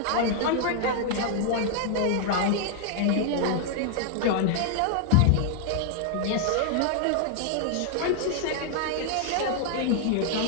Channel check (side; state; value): both; different; correlation -0.01